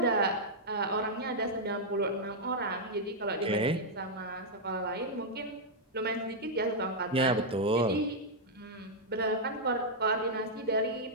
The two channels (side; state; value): both; normal; correlation -0.05